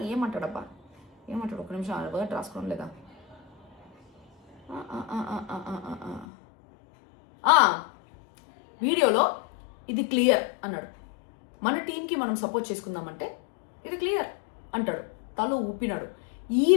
ఏమంటాడబ్బా, ఏమంటాడు, ఒక నిమిషం వర్డ్ రాసుకోవడం లేదా. వీడియోలో ఇది క్లియర్ అన్నాడు, మన టీంకి మనం సపోర్ట్ చేసుకుందామంటే ఇది క్లియర్ అంటాడు, తల ఊపినాడు. ఈ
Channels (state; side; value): drops out; right; at 6.2 s